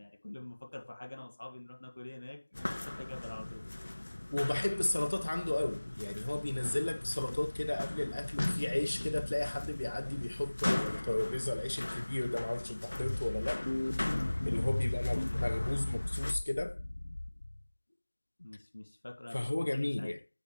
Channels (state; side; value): inverted; both; correlation -1.00